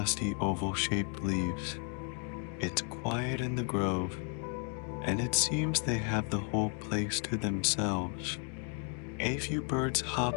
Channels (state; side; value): quieter; right; 38.9 dB